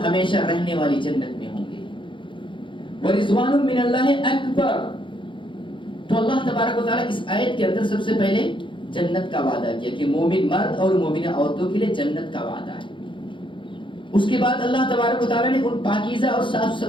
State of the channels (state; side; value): late; right; 0.24 ms